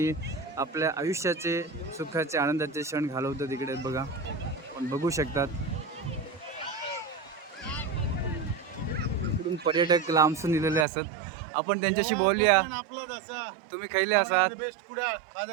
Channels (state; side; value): drops out; left; at 10.9 s